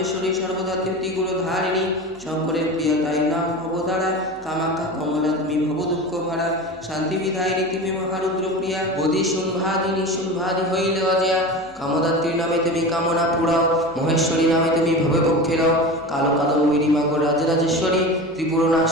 সর্বদা ত্রিগুণ ধারিণী, শঙ্করের প্রিয়া তাই নাম ভবতারা, কামাখ্যা কমলা তুমি ভব দুঃখ ভরা, শান্তি বিধায়িনী তুমি মহারুদ্র প্রিয়া, বোধি শুম্ভাদিনী শুম্ভাদি হইলে অজয়া, কামদাত্রী নামে তুমি কামনা পুরাও, মহেশ্বরী নামে তুমি ভবে পক্ষে রাও, কালো কাদম্বিনী মাগো রাজরাজেশ্বরী, ত্রিপুর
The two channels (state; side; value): noise; left; hum, 27 dB below the sound